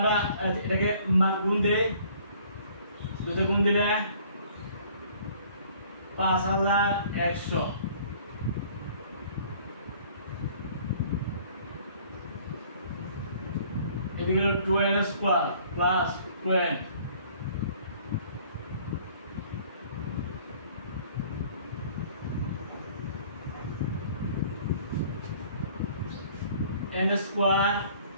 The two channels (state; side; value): inverted; both; correlation -0.55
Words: এটাকে মান গুণ দেই, দুটো গুণ দিলে 5100, এদিকে হলো 2n square plus 2n n square